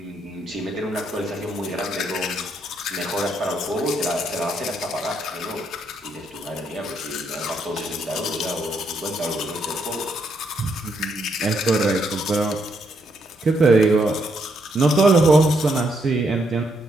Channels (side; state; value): both; normal; correlation 0.76